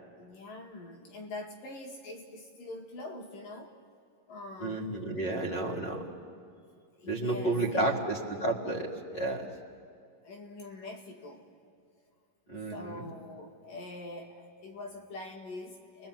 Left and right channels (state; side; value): late; right; 11 ms